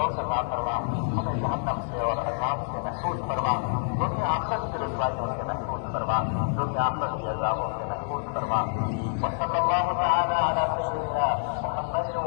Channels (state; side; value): silent; right; digital silence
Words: अता फरमा। हमें जहन्नम से और अज़ाब से महफूज फरमा। दुनिया आखिरत की रुसवाइयों से महफूज फरमा। दुनिया आखिरत के अज़ाबों से महफूज फरमा। वसल्लल्लाहु तआला अला सय्यिदिना मुहम्मद